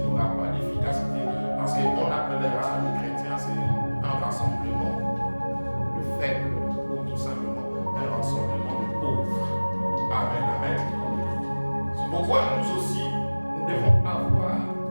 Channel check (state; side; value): inverted; both; correlation -1.00